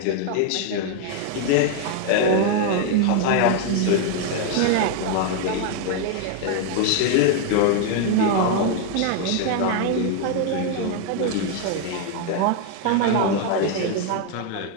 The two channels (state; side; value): different; both; correlation 0.00